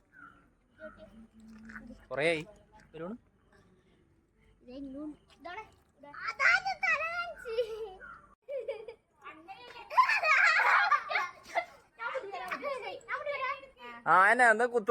കൊറേയായി ആ എന്നാ എന്താ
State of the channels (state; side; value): identical; both; correlation 1.00